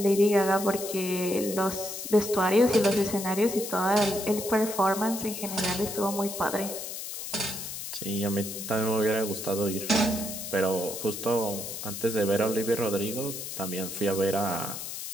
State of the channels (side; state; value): left; noise; hiss, 7 dB below the sound